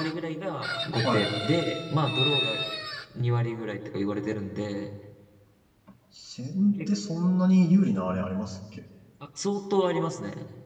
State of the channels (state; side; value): identical; both; correlation 1.00